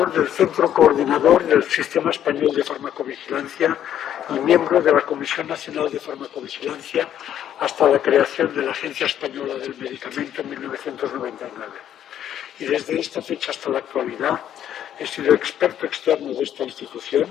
del Centro Coordinador del Sistema Español de Farmacovigilancia y miembro de la Comisión Nacional de Farmacovigilancia hasta la creación de la Agencia Española del Medicamento en 1999. Y desde esta fecha hasta la actualidad he sido experto externo de esta institución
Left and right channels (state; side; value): quieter; right; 10.5 dB